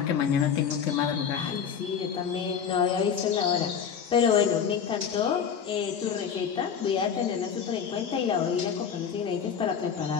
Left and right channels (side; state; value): right; quieter; 7.4 dB